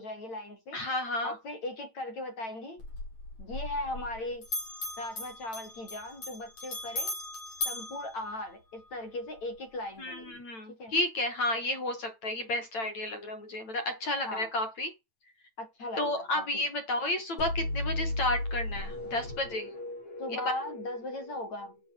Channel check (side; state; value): right; late; 8.9 ms